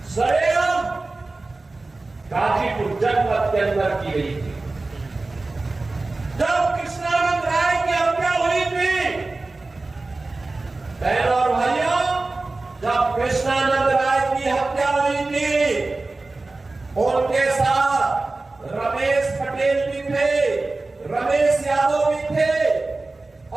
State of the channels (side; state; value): left; quieter; 3.3 dB